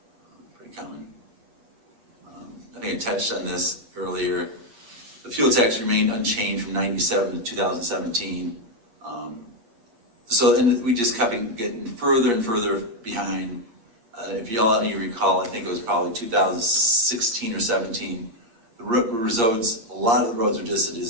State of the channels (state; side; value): late; left; 8.6 ms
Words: Pretty common. I think I touched on this earlier. The fuel tax remained unchanged from 97 to 2017. And we just kept getting further and further behind. If you recall, I think it was probably 2016 or 17. A lot of the roads were just a